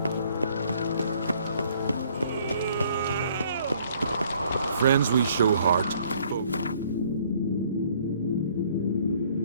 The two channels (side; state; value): both; inverted; correlation -0.61